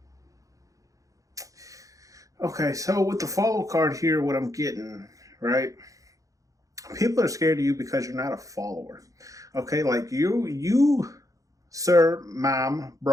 Okay, so with the follow card here, what I'm getting, right? People are scared of you because you're not a follower. Okay, like you, sir, mom,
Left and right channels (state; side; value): late; left; 0.16 ms